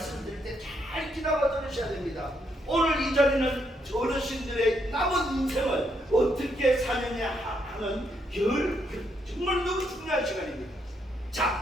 때 잘 기다려 들으셔야 됩니다. 오늘 이 자리는 어르신들의 남은 인생을 어떻게 사느냐 하는 정말 너무 중요한 시간입니다.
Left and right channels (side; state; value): both; normal; correlation 0.76